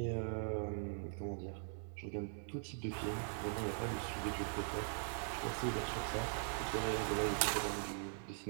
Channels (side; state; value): left; silent; 50 dB below the other